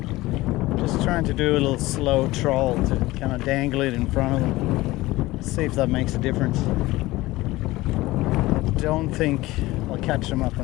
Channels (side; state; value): right; quieter; 18.8 dB